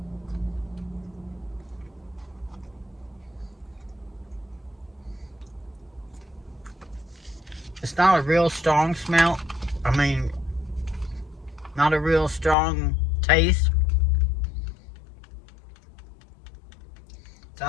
It's not a real strong smell. I mean, not a real strong taste. So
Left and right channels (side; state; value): right; drops out; at 12.6 s